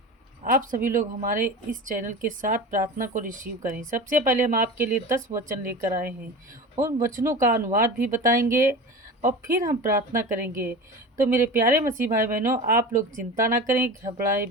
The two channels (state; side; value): normal; both; correlation 0.31